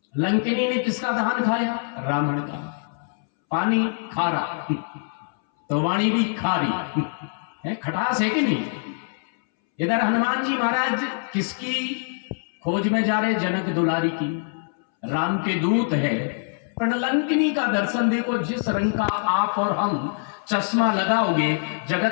लंकिनी ने किसका दहन खाया? रावण का। पानी खारा तो वाणी भी खारी है, खटास है कि नहीं? इधर हनुमान जी महाराज किसकी खोज में जा रहे? जनक दुलारी की, राम के दूत है। पर लंकिनी का दर्शन देखो, जिस रंग का आप और हम चश्मा लगाओगे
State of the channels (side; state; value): right; silent; 63 dB below the other